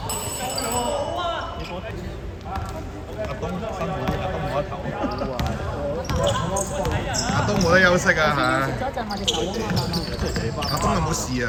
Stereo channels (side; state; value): both; identical; correlation 1.00